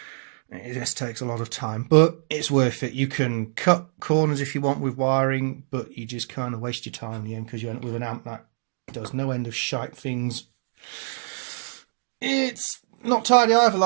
It just takes a lot of time, but it's worth it. You can cut corners if you want with wiring, but you just kind of waste your time in the end because you end up with an amp that does no end of shite things. It's not tidy either,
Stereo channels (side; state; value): left; silent; digital silence